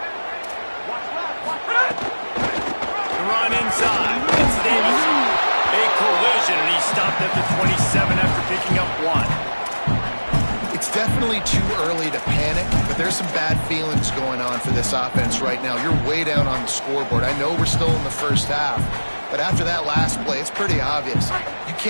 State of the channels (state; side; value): inverted; both; correlation -1.00